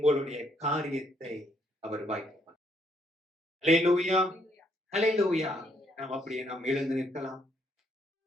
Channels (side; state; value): both; normal; correlation 0.71